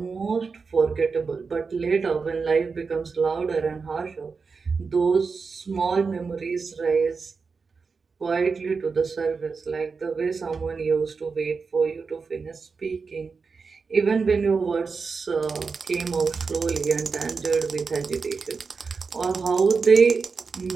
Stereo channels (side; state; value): left; quieter; 4.9 dB